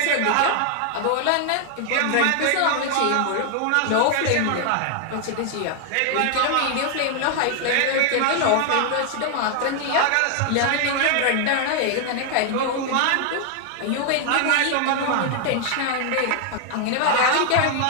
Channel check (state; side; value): different; both; correlation 0.00